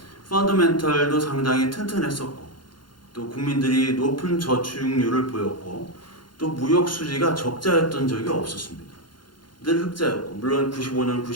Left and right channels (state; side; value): late; right; 0.71 ms